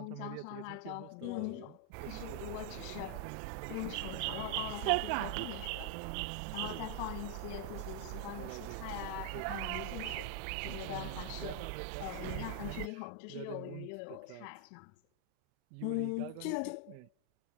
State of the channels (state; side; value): different; both; correlation 0.00